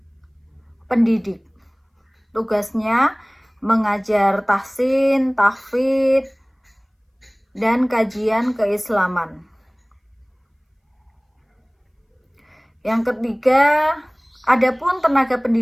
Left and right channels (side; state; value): both; identical; correlation 1.00